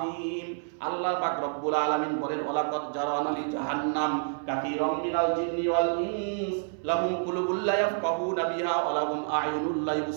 আল্লাহ পাক রব্বুল আলামিন বলেন, ওয়ালাকাদ জারানা লি জাহান্নাম কাসীরাম মিনাল জিন্নি ওয়াল ইনস লাহুম কুলুবুল লা ইয়াফকাহুনা বিহা ওয়া লাহুম আ'য়ুনুল লা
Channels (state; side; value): silent; left; 59 dB below the other